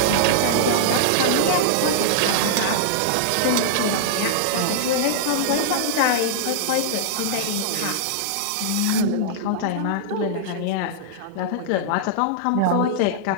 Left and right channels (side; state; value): both; different; correlation -0.02